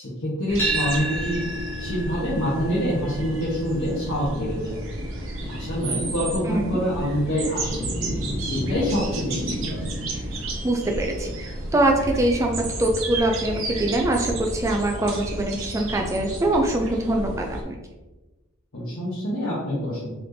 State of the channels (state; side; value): normal; both; correlation 0.58